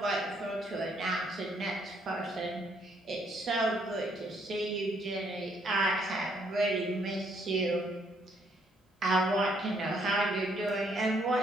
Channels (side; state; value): both; normal; correlation 0.69